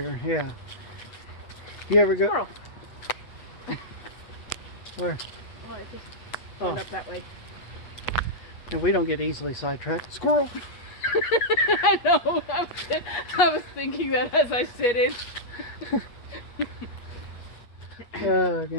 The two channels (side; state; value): right; late; 8.3 ms